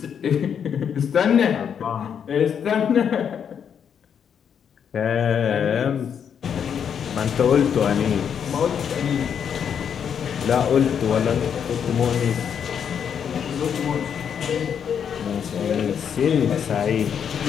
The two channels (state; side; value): quieter; right; 7.8 dB